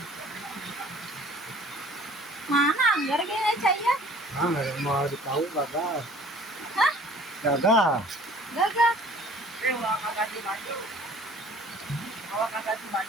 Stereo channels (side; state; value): both; normal; correlation 0.50